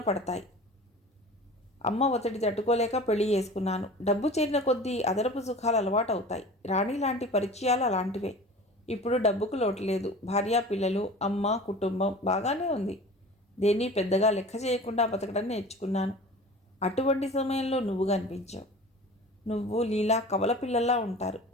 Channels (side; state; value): both; normal; correlation 0.39